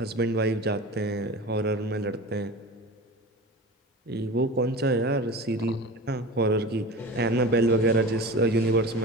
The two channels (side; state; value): both; normal; correlation 0.33